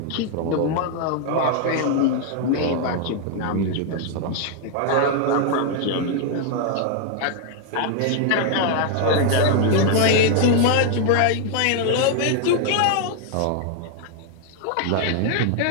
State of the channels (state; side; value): different; both; correlation 0.00